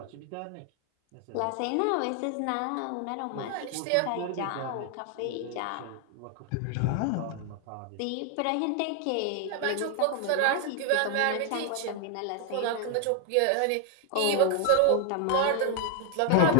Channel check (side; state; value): both; different; correlation 0.00